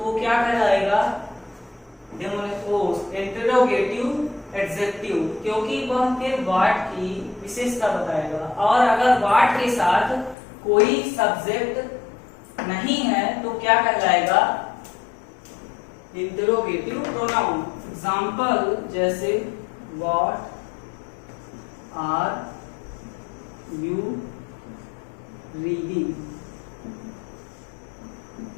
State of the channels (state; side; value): drops out; right; at 10.4 s